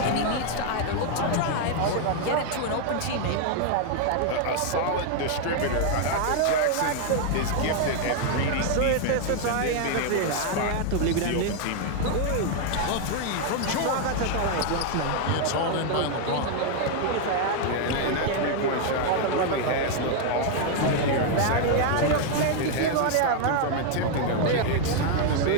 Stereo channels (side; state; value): both; different; correlation 0.00